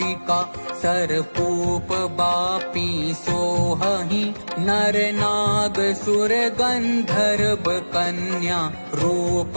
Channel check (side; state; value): both; inverted; correlation -1.00